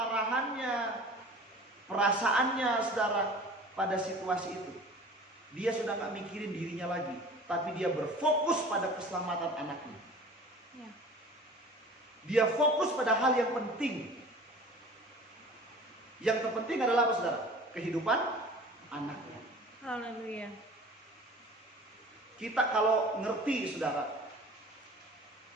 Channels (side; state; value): both; normal; correlation 0.43